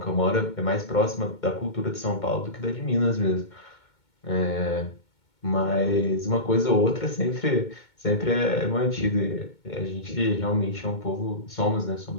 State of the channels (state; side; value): late; right; 2.2 ms